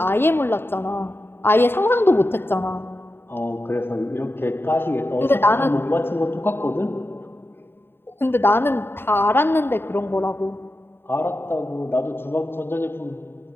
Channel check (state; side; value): late; right; 0.11 ms